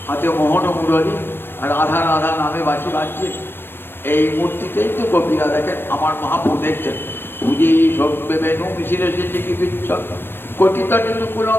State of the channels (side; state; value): right; late; 0.10 ms